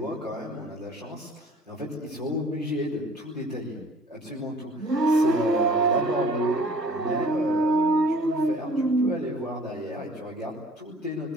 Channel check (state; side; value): normal; both; correlation 0.51